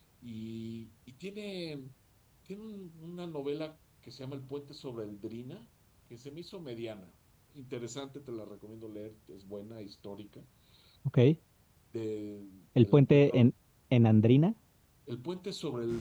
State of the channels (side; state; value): both; identical; correlation 1.00